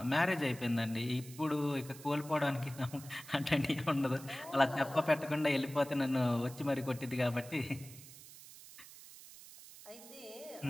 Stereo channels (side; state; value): right; noise; hiss, 17 dB below the sound